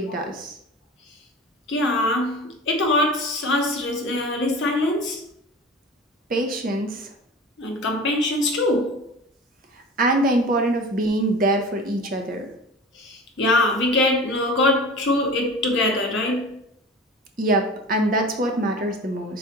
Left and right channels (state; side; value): normal; both; correlation 0.36